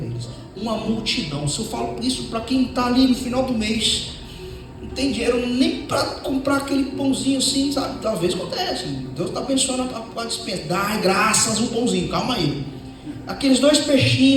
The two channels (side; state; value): both; identical; correlation 1.00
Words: eles. Uma multidão. Se eu falo isso para quem está ali no final do mês, não tem dinheiro nem para comprar aquele pãozinho assim, sabe? Talvez acontece, Deus está abençoando a dispensa, dá graças um pãozinho, calma aí, aqueles 2